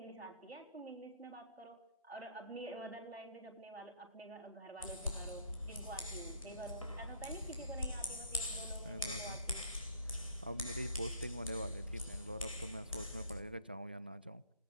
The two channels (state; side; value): inverted; both; correlation -0.57